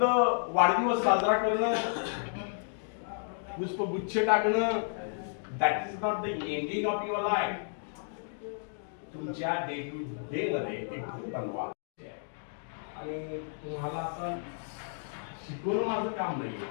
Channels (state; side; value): silent; right; digital silence